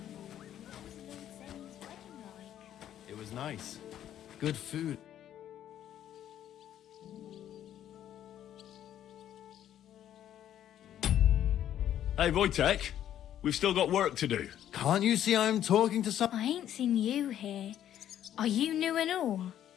It was nice. Good food. Hey, Wojtek, we've still got work to do. Can't you see I'm talking to some... I ain't seen you here. Are you new and all?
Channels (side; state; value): right; quieter; 11.0 dB